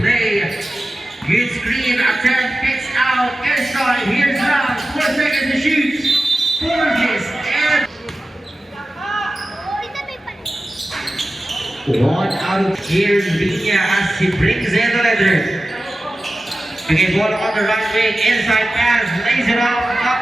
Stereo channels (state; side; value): normal; both; correlation 0.95